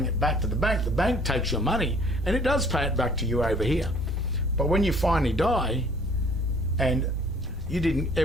it back to the bank takes your money and it does pay it back to you over here. But when you finally die and you didn't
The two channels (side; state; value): right; noise; rumble, 16 dB below the sound